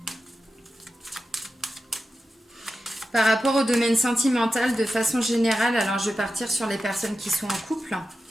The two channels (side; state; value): both; normal; correlation 0.92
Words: Par rapport au domaine sentimental, de façon générale, alors je vais partir sur les personnes qui sont en couple.